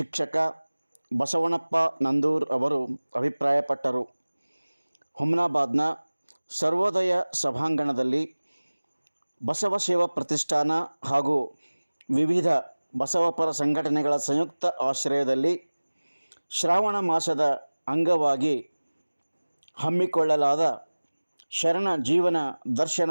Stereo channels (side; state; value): both; inverted; correlation -1.00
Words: ಬಸವಣ್ಣಪ್ಪ ನಂದೂರ್ ಅವರು ಅಭಿಪ್ರಾಯಪಟ್ಟರು. ಹುಮ್ನಾಬಾದ್ನ ಸರ್ವೋದಯ ಸಭಾಂಗಣದಲ್ಲಿ ಬಸವ ಸೇವಾ ಪ್ರತಿಷ್ಠಾನ ಹಾಗೂ ವಿವಿಧ ಬಸವಪರ ಸಂಘಟನೆಗಳ ಸಂಯುಕ್ತ ಆಶ್ರಯದಲ್ಲಿ ಶ್ರಾವಣ ಮಾಸದ ಅಂಗವಾಗಿ ಹಮ್ಮಿಕೊಳ್ಳಲಾದ ಶರಣ ಜೀವನ